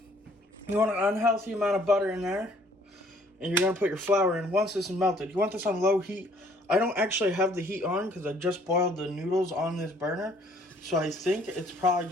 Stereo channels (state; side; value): normal; both; correlation 0.60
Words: You want an unhealthy amount of butter in there. And you're going to put your flour in. Once this is melted, you want this on low heat. I don't actually have the heat on because I just boiled the noodles on this burner. So I think it's probably